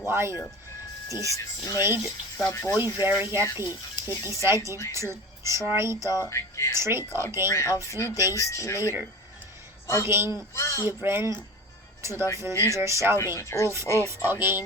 This made the boy very happy. He decided to try the trick again a few days later. Again he ran to the villagers shouting, "Wolf, wolf!"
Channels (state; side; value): normal; both; correlation 0.34